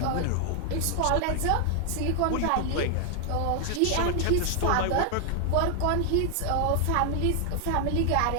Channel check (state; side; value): different; both; correlation 0.00